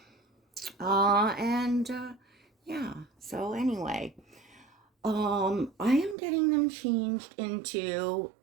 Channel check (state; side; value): drops out; left; at 6.2 s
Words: And yeah, so anyway, I am getting them changed into,